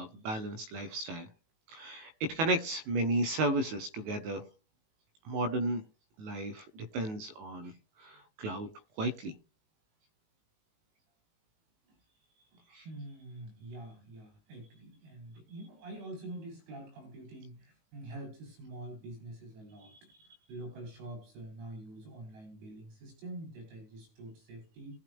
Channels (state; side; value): late; left; 19 ms